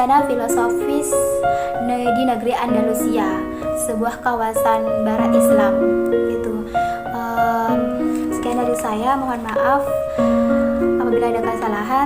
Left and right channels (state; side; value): identical; both; correlation 1.00